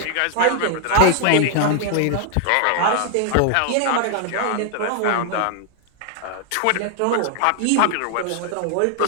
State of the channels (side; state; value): both; different; correlation 0.00